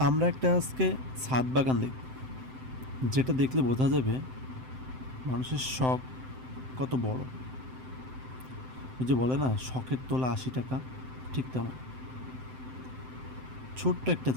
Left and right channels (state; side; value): late; left; 7.8 ms